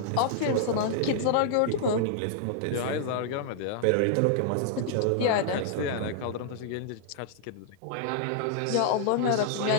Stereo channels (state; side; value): different; both; correlation -0.01